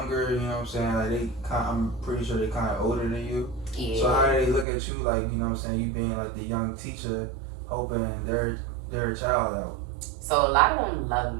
you know what I'm saying? Like I'm pretty sure they kind of older than you. Yeah. So how do they look at you? Like, you know what I'm saying? You being like the young teacher, hoping their child out. So a lot of them love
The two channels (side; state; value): left; drops out; at 4.7 s